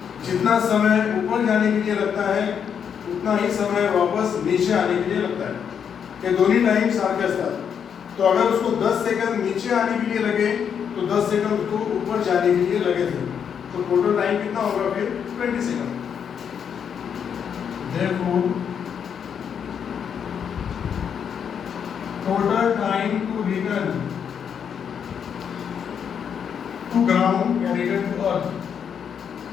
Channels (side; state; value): right; quieter; 7.7 dB